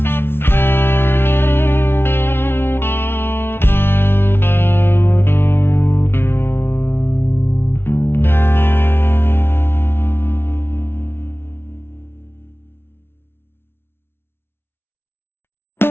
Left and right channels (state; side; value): late; right; 0.11 ms